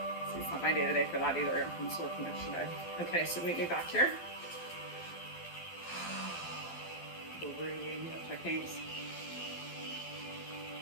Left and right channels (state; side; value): late; right; 12 ms